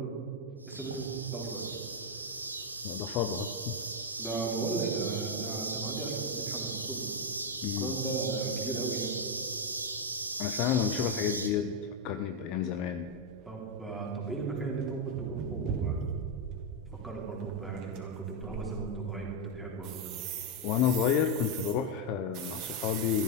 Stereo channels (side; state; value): both; normal; correlation 0.02